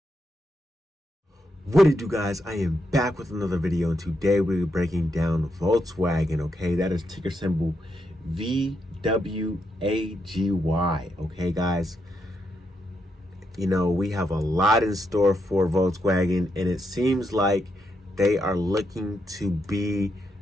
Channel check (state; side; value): normal; both; correlation 0.81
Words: What it do, guys? I am back with another video, and today we're breaking down Volkswagen. Okay, that is ticker symbol VWAGY. Okay, guys, you know, we have a lot in store for Volkswagen, and it seems like they are looking to be